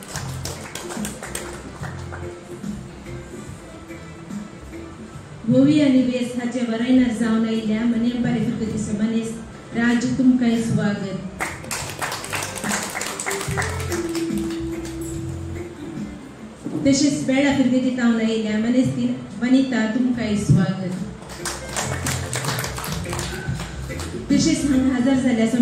गोवी आनी वेस हाचे वरायनार जावन आयिल्ल्या मनेंपारे फिरकतीचो मनीस राजू. तुमकांय स्वागत. तशेंच बेळा फिरकतींत जावन आयिल्ल्या मनीस वनिता. तुमकांय स्वागत. तशेंच हांगा हजर जाल्ल्या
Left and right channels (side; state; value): both; identical; correlation 1.00